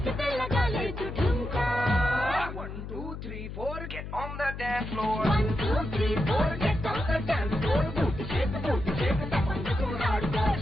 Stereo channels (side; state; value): left; noise; hum, 9 dB below the sound